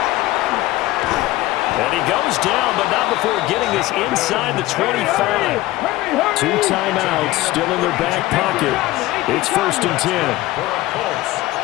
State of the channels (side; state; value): right; quieter; 17.3 dB